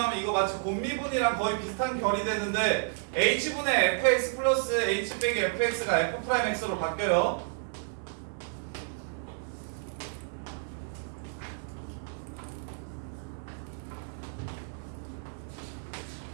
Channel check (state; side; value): silent; left; 57 dB below the other